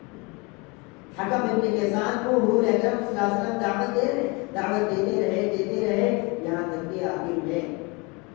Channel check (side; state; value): right; quieter; 28.4 dB